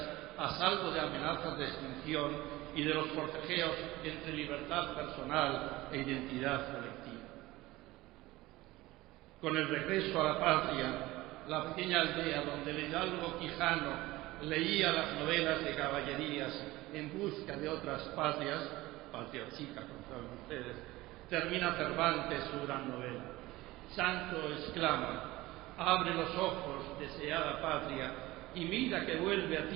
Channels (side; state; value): left; quieter; 18.7 dB